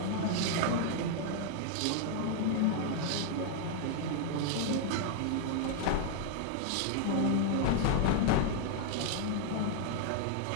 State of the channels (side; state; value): both; different; correlation 0.00